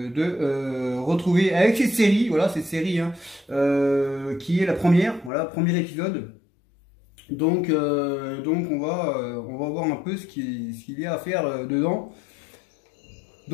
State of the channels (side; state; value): right; drops out; at 5.3 s